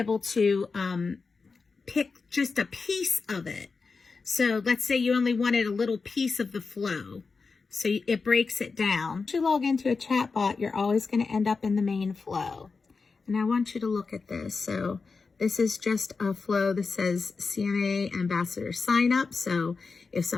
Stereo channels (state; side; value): quieter; right; 4.5 dB